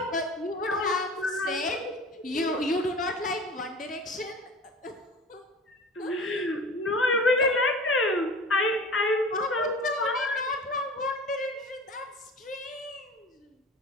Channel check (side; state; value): both; normal; correlation 0.38